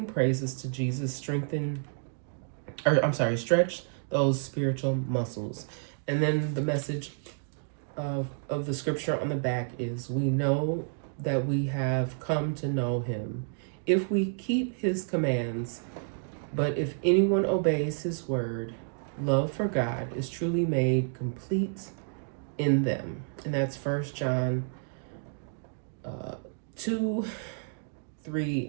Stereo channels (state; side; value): silent; left; digital silence